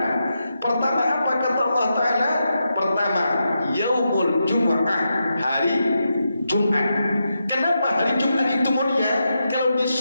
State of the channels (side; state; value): both; inverted; correlation -0.86